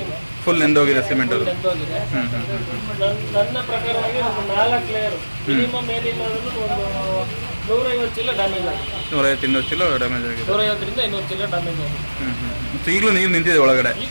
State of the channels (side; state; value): both; inverted; correlation -1.00